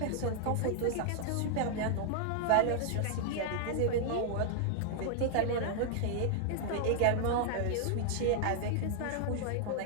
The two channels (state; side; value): different; both; correlation -0.01